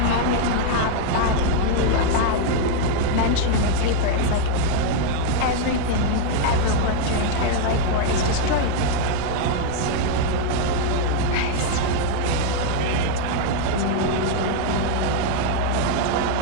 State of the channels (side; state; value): both; different; correlation 0.00